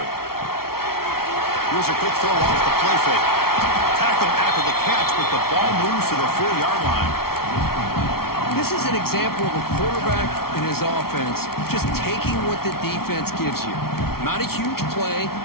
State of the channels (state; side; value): late; right; 0.94 ms